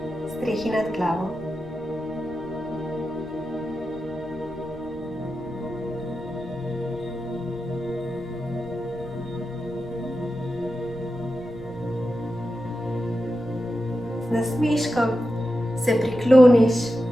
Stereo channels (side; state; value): left; noise; rumble, 18 dB below the sound